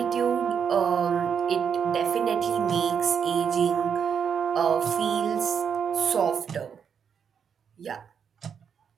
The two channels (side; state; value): left; quieter; 7.3 dB